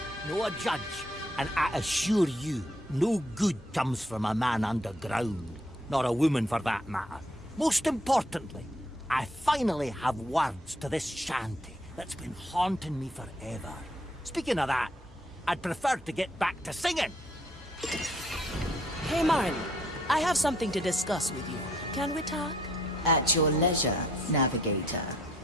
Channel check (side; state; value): both; normal; correlation 0.67